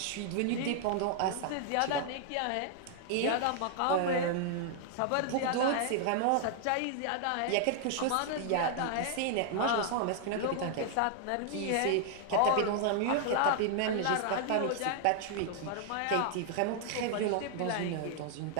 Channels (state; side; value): different; both; correlation 0.00